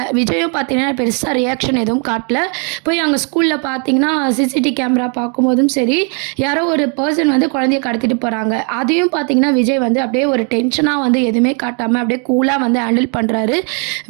விஜயும் பார்த்தீங்கன்னா பெருசாக ரியாக்ஷன் எதுவும் காட்டல. போய் அங்கே ஸ்கூலில் பார்த்தீங்கன்னா சிசிடிவி கேமரா பார்க்கும்போதும் சரி, யாரோ ஒரு பர்சன் வந்து குழந்தைய கடத்திட்டு போகிறாங்க. அதையும் பார்த்தீங்கன்னா விஜய் வந்து அப்படியே ஒரு டென்ஷனாக வந்து எதுவுமே காட்டாமல் அப்படியே கூலாக வந்து ஹேண்டில் பண்ணுறாரு.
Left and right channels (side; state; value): left; quieter; 38.6 dB